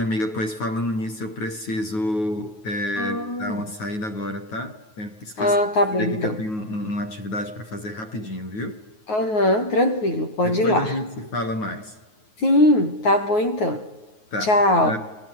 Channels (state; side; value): late; right; 9.4 ms